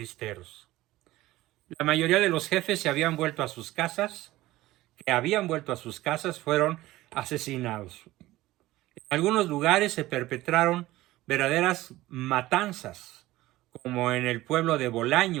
La mayoría de los jefes se habían vuelto a sus casas, fueron asesinados. En algunos lugares se perpetraron verdaderas matanzas, como en el pueblo de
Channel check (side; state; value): left; quieter; 17.1 dB